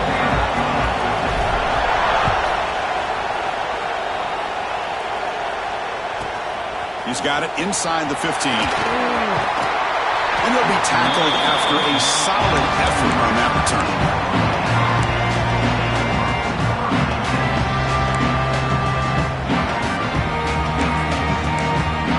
He's got it inside the 15. And he'll be tackled after a solid effort on that return.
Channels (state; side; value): identical; both; correlation 1.00